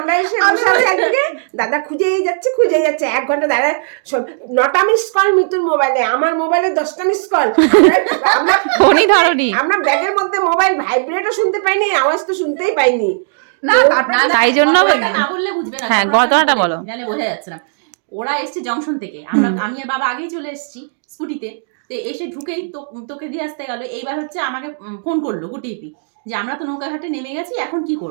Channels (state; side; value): silent; left; digital silence